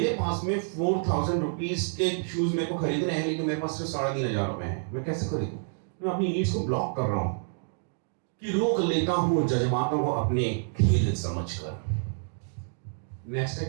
पास में 4000 रुपीज के शूज मेरे को खरीदने हैं लेकिन मेरे पास सिर्फ 3500 रुपए हैं, मैं कैसे खरीदूं? मैं अपनी नीड्स को ब्लॉक कर रहा हूं, कि रोक लेता हूं जज्बातों को अपने खेल समझकर। नेक्स्ट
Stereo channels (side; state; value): left; silent; digital silence